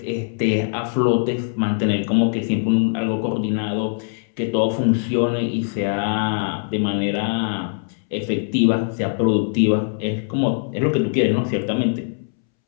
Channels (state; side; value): silent; right; 65 dB below the other